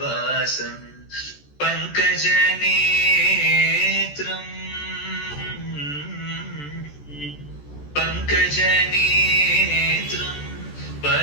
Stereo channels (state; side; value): late; right; 14 ms